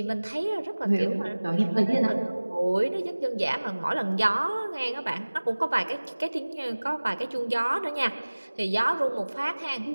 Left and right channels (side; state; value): both; inverted; correlation -1.00